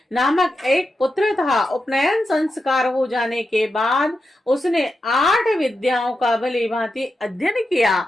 नामक एक पुत्र था। उपनयन संस्कार हो जाने के बाद उसने 8 विद्याओं का भली भांति अध्ययन किया,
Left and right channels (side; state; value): both; normal; correlation 0.88